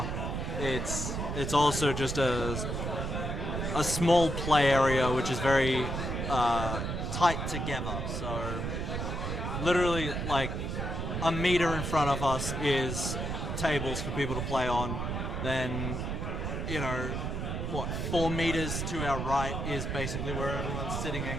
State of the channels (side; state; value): right; noise; rumble, 3 dB below the sound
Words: it's also just a small play area, which is very tight together. So, literally, like a meter in front of us is tables for people to play on. Then, 4 meters to our right is basically where everyone's sitting